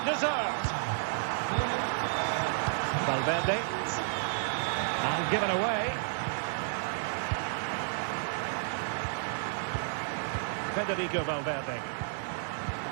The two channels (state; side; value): silent; left; 57 dB below the other